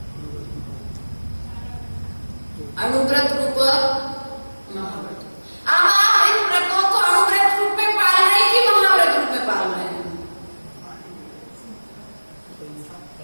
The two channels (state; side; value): inverted; both; correlation -1.00